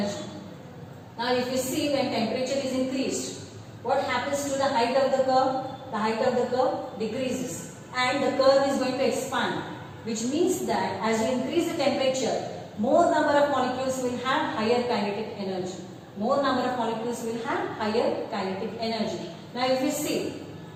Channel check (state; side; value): identical; both; correlation 1.00